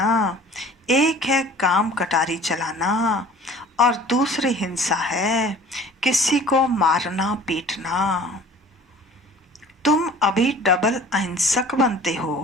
एक है काम कटारी चलाना और दूसरी हिंसा है किसी को मारना पीटना। तुम अभी डबल अहिंसक बनते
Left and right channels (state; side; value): normal; both; correlation 0.47